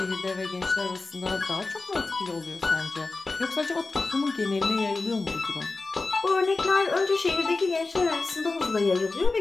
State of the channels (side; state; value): right; quieter; 3.6 dB